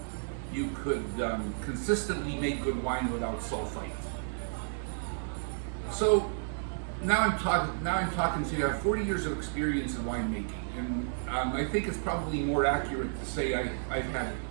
consistently make good wine without sulfite. So now I'm talking to you. I have 40 years of experience in winemaking, and I think it's probably more accurate to say I've had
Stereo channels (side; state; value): left; silent; 57 dB below the other